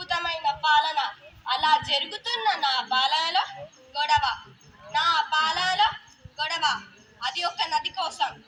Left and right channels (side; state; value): both; identical; correlation 1.00